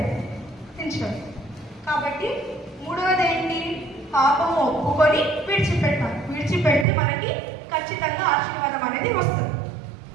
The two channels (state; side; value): drops out; left; at 6.9 s